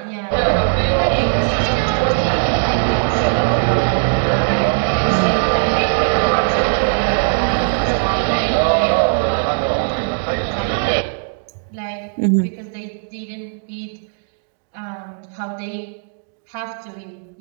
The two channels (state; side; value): silent; left; digital silence